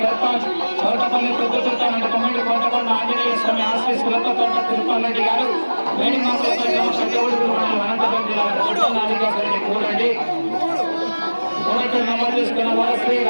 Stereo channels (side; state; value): both; inverted; correlation -1.00